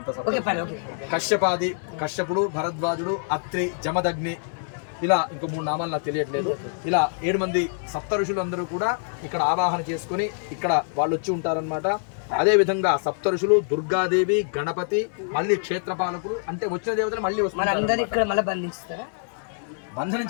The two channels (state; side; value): silent; right; digital silence